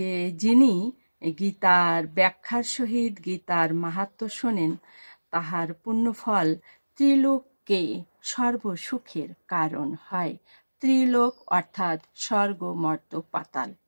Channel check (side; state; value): both; inverted; correlation -1.00